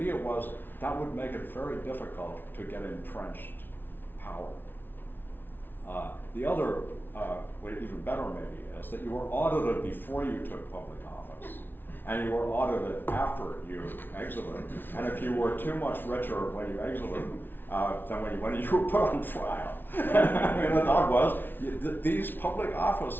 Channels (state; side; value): late; right; 0.097 ms